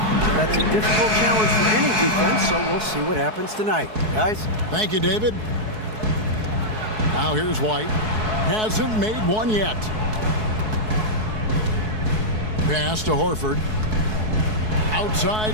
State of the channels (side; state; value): left; late; 4.7 ms